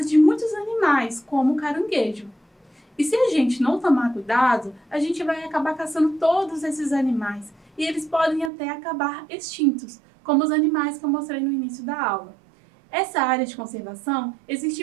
de muitos animais, como o caranguejo. E se a gente não tomar cuidado, a gente vai acabar caçando todos esses animais, e eles podem até acabar extintos, como os animais que eu mostrei no início da aula. Essa área de conservação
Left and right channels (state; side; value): drops out; left; at 8.5 s